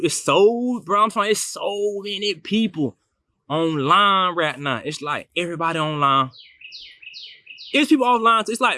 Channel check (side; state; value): both; identical; correlation 1.00